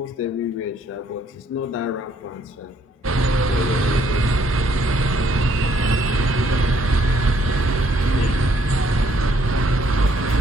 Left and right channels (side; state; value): both; normal; correlation 0.67